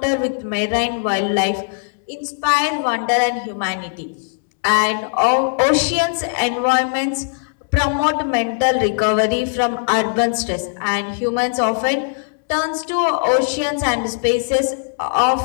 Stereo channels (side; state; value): right; silent; 66 dB below the other